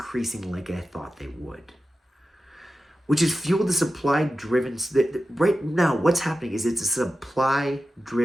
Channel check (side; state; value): both; normal; correlation 0.93